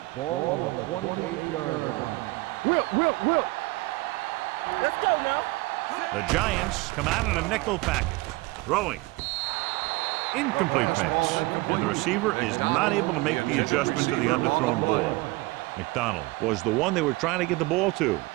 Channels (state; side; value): quieter; left; 22.3 dB